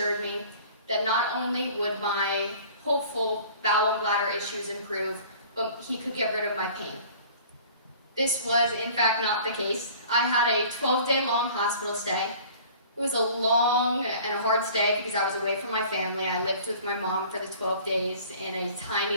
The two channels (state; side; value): inverted; both; correlation -0.47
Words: me that not only would my hopeful bowel and bladder issues improve, but he could get rid of my pain. This was, in fact, not the case. I had a 12-day long hospital stay. It was a long and a hard stay because I was away from my family. I lived with my mom for the 12 days in a